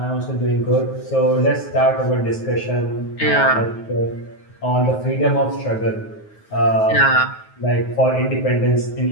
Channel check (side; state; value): right; late; 9.4 ms